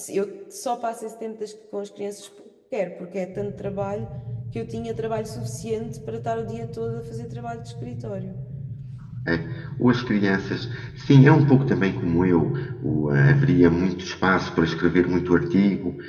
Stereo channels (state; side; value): identical; both; correlation 1.00